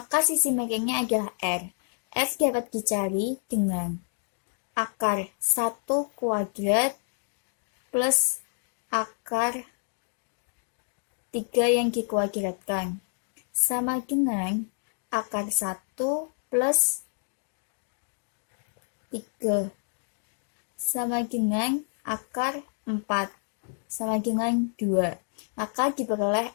sisi miringnya adalah R. R dapat dicari dengan akar 1 kuadrat plus akar 3 yang dikuadratkan sama dengan akar 1 plus 3 sama dengan akar 4 sama dengan 2. Maka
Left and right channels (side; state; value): right; silent; 56 dB below the other